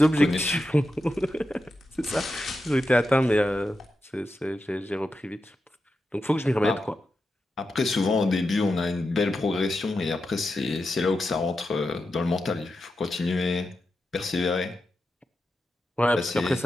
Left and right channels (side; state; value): both; normal; correlation 0.89